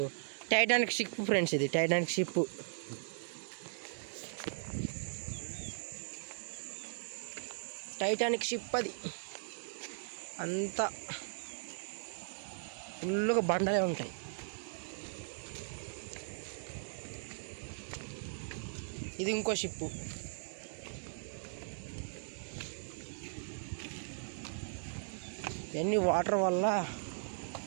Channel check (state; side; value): silent; left; digital silence